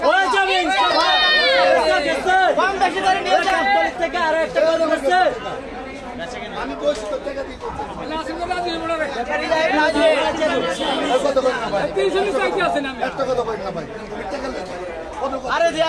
কম বেশি করে নিয়ে যান থেকে আরো একটা কথা বলছে। আমি বলছি তো টাকা দিই আরে দিয়া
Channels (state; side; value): identical; both; correlation 1.00